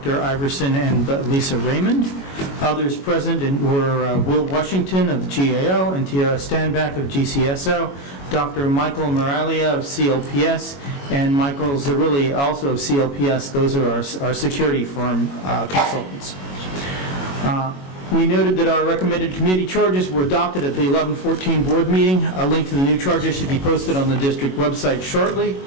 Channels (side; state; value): right; late; 21 ms